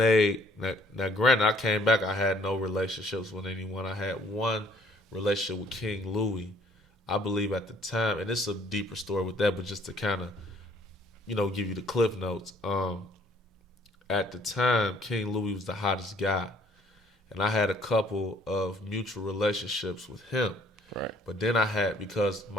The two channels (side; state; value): both; normal; correlation 0.60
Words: now. Granted, I came back. I had no relationships with anyone. I had one relationship with King Louis, I believe at the time, and it's a deeper story with that, but just to kind of, you know, give you the cliff notes. At the time, King Louis was the hottest guy, and I had a couple of mutual relationships with him. Right. But then I had, because